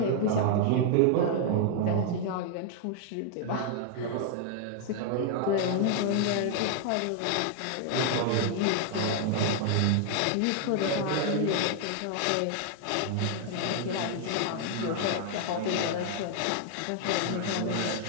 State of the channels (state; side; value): different; both; correlation 0.00